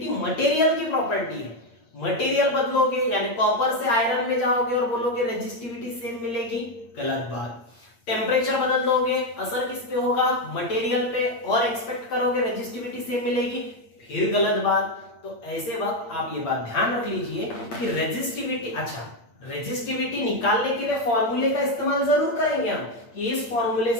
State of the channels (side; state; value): right; late; 8.7 ms